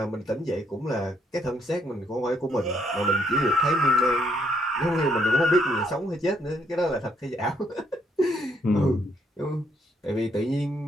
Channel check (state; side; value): normal; both; correlation 0.72